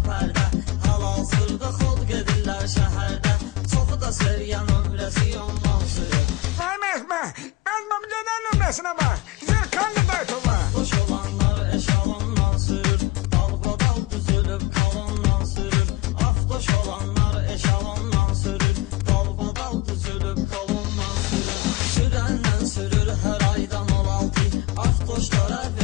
pərdə. Hal-hazırda xod gedirlər şəhərdə. Çoxu da seriyan ömrəsi ondan sürür. Mehme. Azmam gelen ömresine bak. Zirkanlı daytoma. Afdoş olanlar eşalondan sürür. Dalbadal düzülüp kalondan sürür. Afdoş olanlar eşalondan sürür. Dalbadal düzülüp kalondan sürür. Sürəndən sürür hər aydan 16. Afdoşlara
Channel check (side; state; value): right; quieter; 19.8 dB